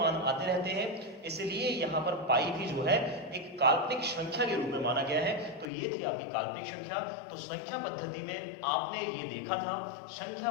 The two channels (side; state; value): right; drops out; at 5.7 s